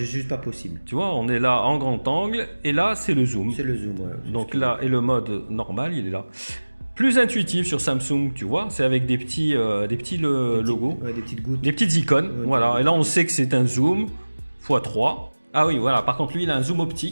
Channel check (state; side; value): inverted; both; correlation -1.00